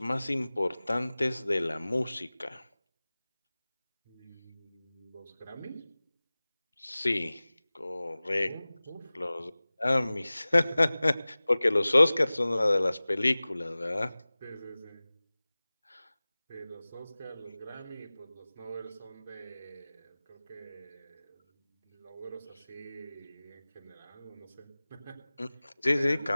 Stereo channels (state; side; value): inverted; both; correlation -0.99